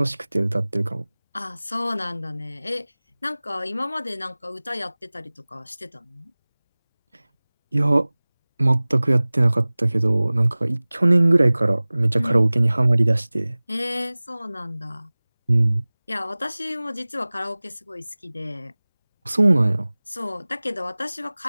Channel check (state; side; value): inverted; both; correlation -0.99